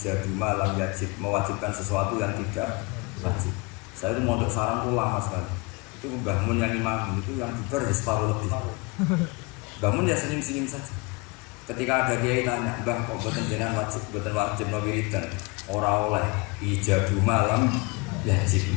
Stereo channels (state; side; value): quieter; right; 27.5 dB